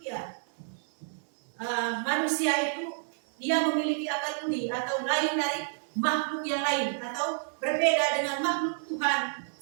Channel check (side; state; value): left; silent; digital silence